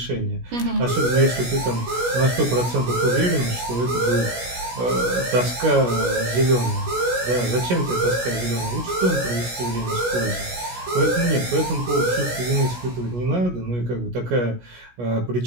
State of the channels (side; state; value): left; late; 16 ms